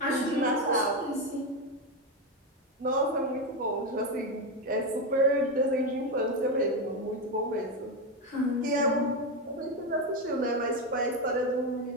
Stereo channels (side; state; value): both; normal; correlation 0.11